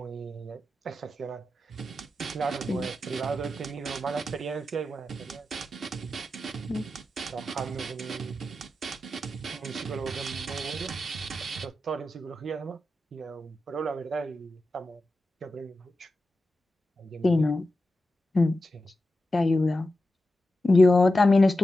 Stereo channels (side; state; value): both; normal; correlation 0.91